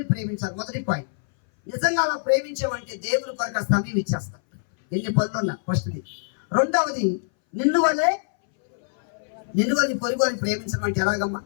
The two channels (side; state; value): right; silent; 60 dB below the other